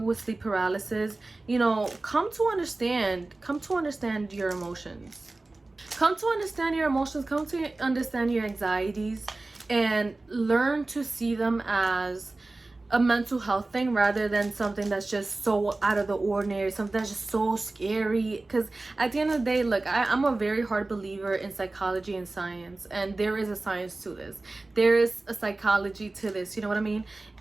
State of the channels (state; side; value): quieter; left; 3.1 dB